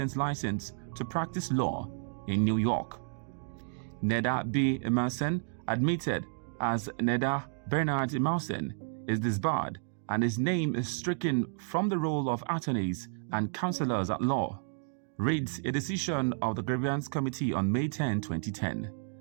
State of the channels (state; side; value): silent; left; digital silence